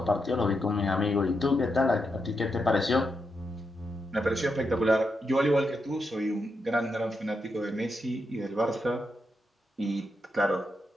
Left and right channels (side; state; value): both; normal; correlation 0.84